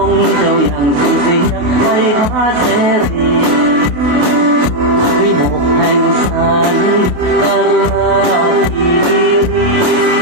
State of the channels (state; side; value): late; left; 28 ms